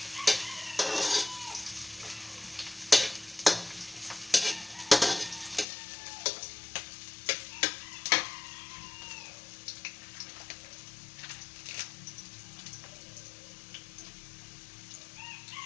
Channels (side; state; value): right; drops out; at 5.7 s